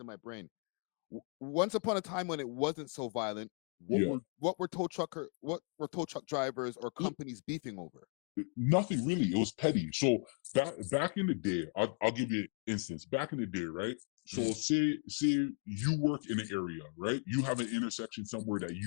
my brain. Once upon a time when it wasn't so violent, what were tow truck drivers or companies beefing over? Nothing really. It was petty. So back in the day, I'll give you an instance. Back in the day, right? So say you work in an area, right? You have an intersection somewhere that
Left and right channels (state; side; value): quieter; right; 37.9 dB